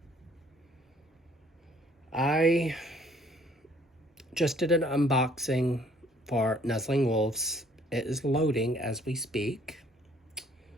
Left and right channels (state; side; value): normal; both; correlation 0.61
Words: I just did an unboxing for Nuzzling Wolves. It is loading as we speak.